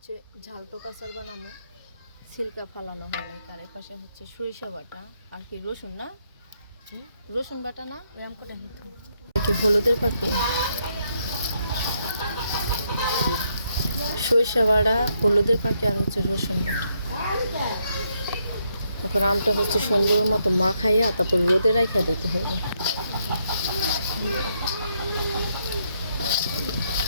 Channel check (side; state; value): both; inverted; correlation -0.76